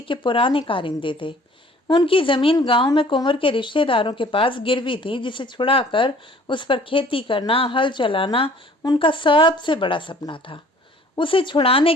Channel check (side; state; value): both; normal; correlation 0.53